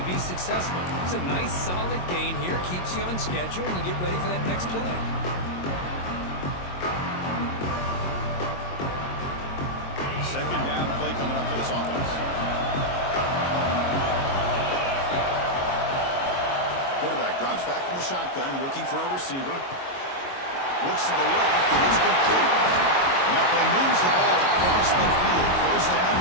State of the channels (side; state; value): right; late; 22 ms